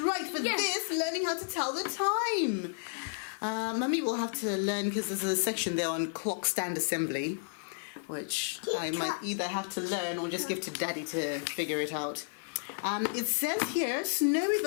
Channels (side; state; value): right; silent; digital silence